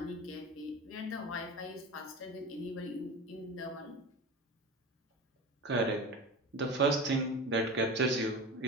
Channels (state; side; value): normal; both; correlation 0.30